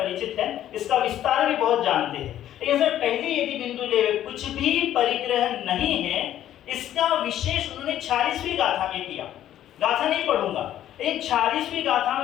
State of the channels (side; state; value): right; quieter; 11.9 dB